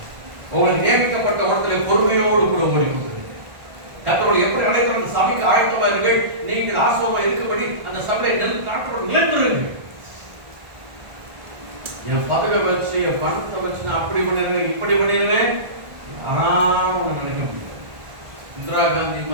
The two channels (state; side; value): late; left; 1.4 ms